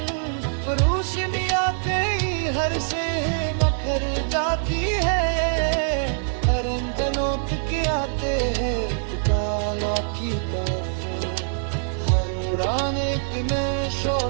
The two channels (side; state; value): left; silent; digital silence